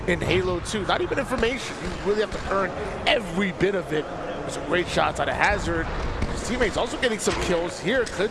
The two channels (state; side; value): identical; both; correlation 1.00